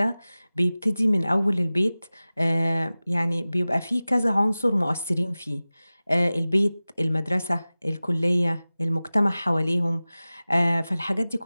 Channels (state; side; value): inverted; both; correlation -0.97